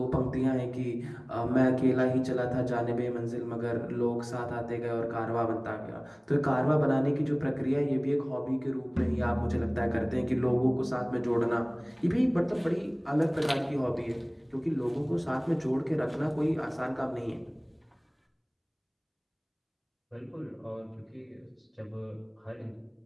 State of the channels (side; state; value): both; identical; correlation 1.00